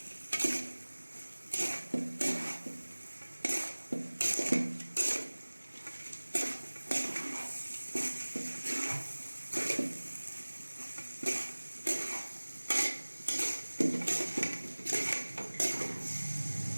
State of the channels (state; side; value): inverted; both; correlation -1.00